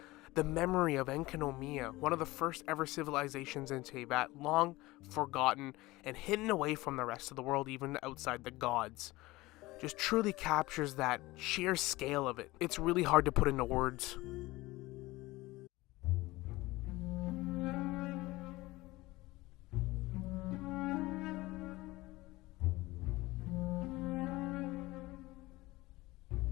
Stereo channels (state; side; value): quieter; right; 19.9 dB